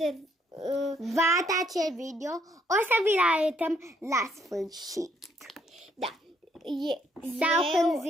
Vata acel video, o să vi-l arătăm la sfârșit. da. Sau când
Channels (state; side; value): normal; both; correlation 0.70